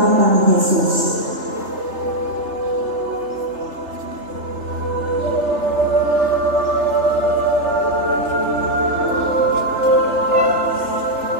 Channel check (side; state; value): left; late; 3.3 ms